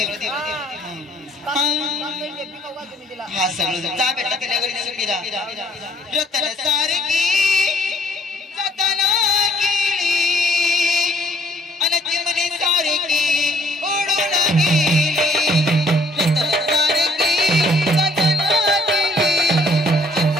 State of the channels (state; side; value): normal; both; correlation 0.62